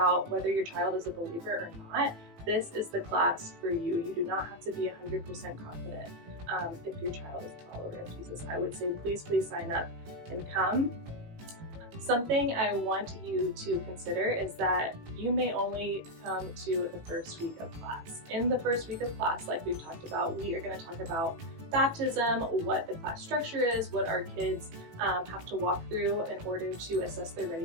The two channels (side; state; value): left; late; 18 ms